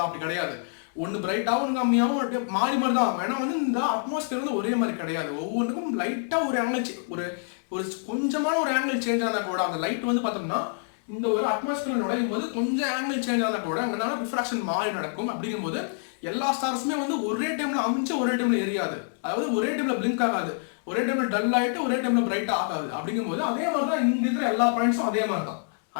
அப்படி கிடையாது. ஒன்று பிரைட்டாகவும் ஒன்று கம்மியாகவும் மாறி மாதிரி தான் ஆகும். ஏன்னா வந்து இந்த அட்மாஸ்பியர் வந்து ஒரே மாதிரி கிடையாது. ஒவ்வொன்றுக்கும் லைட்டாக ஒரு ஆங்கிள் ஒரு கொஞ்சமான ஒரு ஆங்கிள் சேஞ்ச் ஆனால் கூட அந்த லைட் வந்து பார்த்தோம்னா இந்த ஒரு அட்மாஸ்பியர் நுழையும் போது கொஞ்சம் ஆங்கிள் சேஞ்ச் ஆனால் கூட அங்கே ரிஃப்ராக்ஷன் மாறி நடக்கும். அப்படிங்கும்போது எல்லா ஸ்டார்ஸுமே வந்து ஒரே டைம்ல அமைஞ்சு ஒரே டைம்ல எரியாது, அதாவது ஒரே டைம்ல பிளிங்க் ஆகாது, ஒரே டைம்ல டல் ஆகிட்டு ஒரே டைம்ல பிரைட் ஆகாது. அப்படிங்கும்போது அதே மாதிரி தான் இங்க இருக்கிற எல்லா பாயிண்ட்ஸும் அதே மாதிரி தான்,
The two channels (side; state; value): right; silent; digital silence